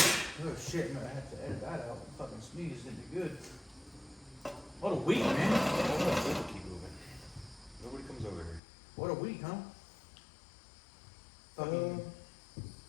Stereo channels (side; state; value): right; drops out; at 8.6 s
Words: shit, man, I have to edit that out. Fucking sneeze didn't be good. What a week, man. Keep moving. Nobody comes over here. What a week, huh? Fucking